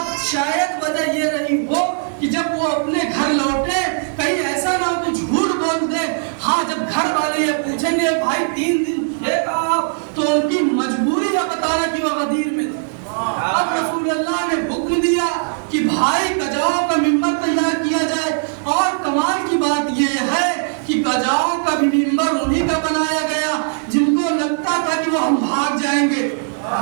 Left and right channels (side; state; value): left; silent; digital silence